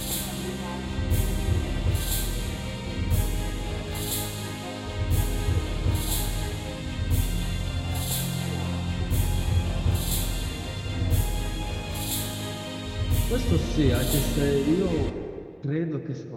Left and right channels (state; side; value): identical; both; correlation 1.00